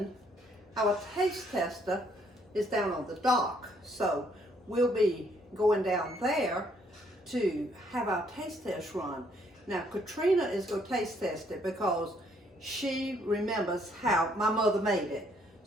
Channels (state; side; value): normal; both; correlation 0.68